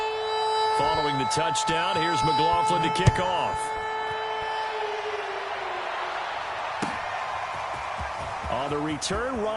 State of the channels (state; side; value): identical; both; correlation 1.00